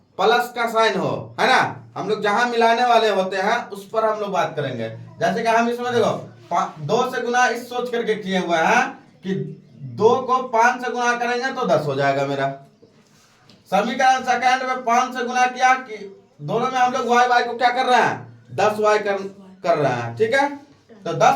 प्लस का साइन हो, है ना। हम लोग जहां मिलाने वाले होते हैं उस पर हम लोग बात करेंगे। जैसे कि हम इसमें देखो 2 से गुना इस सोच करके किए हुए हैं कि 2 को 5 से गुना करेंगे तो 10 हो जाएगा मेरा। समीकरण सेकंड में 5 से गुना किया कि दोनों में हम लोग y को क्या कर रहे हैं, 10y कर रहे हैं, ठीक है। तो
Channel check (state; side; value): identical; both; correlation 1.00